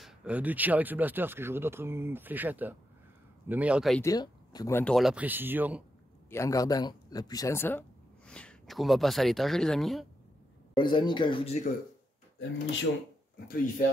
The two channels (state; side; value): normal; both; correlation 0.84